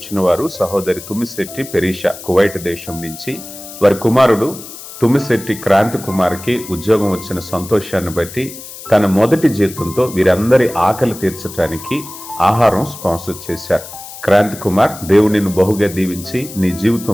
వారు సహోదరి తుమ్మిశెట్టి పెరీషా, కువైట్ దేశం నుంచి. వారి కుమారుడు తుమ్మిశెట్టి క్రాంతి కుమార్కి ఉద్యోగం వచ్చిన సంతోషాన్ని బట్టి తన మొదటి జీతంతో వీరందరి ఆకలి తీర్చడానికి ఆహారం స్పాన్సర్ చేశారు. క్రాంతి కుమార్, దేవునిని బహుగా దీవించి నీ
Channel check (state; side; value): noise; left; hiss, 14 dB below the sound